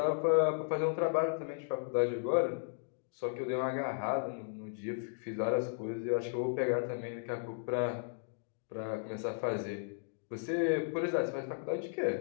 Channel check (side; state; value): right; silent; digital silence